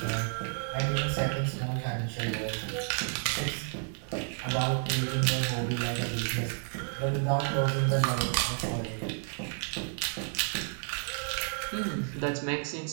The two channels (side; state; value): left; silent; 57 dB below the other